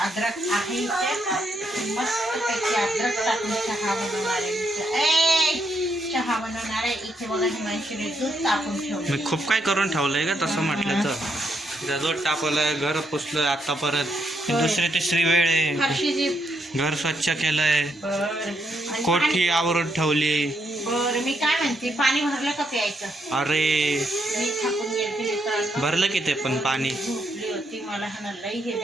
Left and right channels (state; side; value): normal; both; correlation 0.77